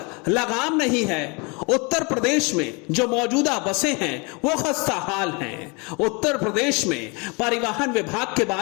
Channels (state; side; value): quieter; right; 30.3 dB